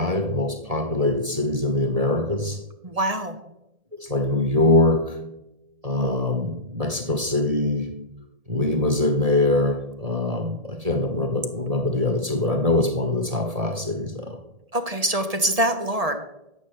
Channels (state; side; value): late; left; 1.7 ms